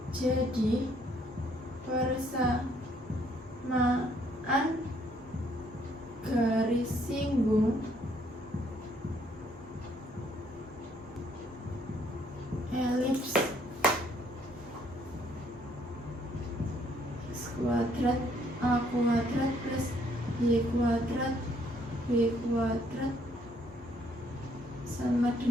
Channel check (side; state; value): both; normal; correlation 0.67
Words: persamaan garis singgung elips X kuadrat A kuadrat plus Y kuadrat B kuadrat sama